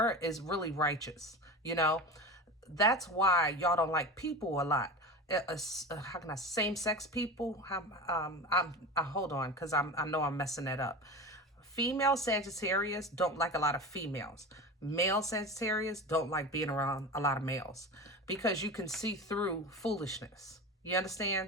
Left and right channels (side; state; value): both; normal; correlation 0.28